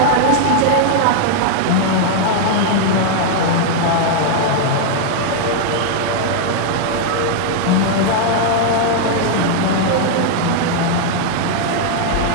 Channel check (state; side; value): different; both; correlation 0.00